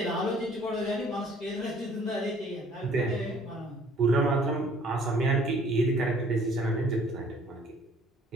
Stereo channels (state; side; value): normal; both; correlation 0.57